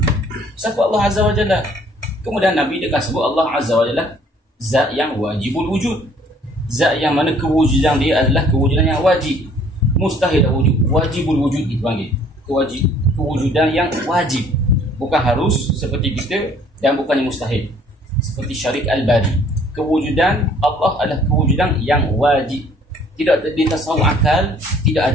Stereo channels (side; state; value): both; normal; correlation 0.58